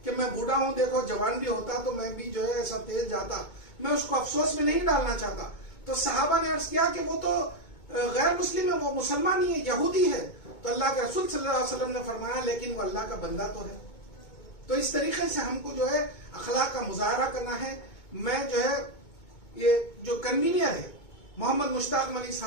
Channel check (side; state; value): right; late; 2.2 ms